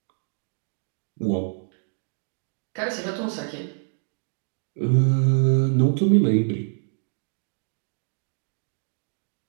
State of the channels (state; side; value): silent; left; digital silence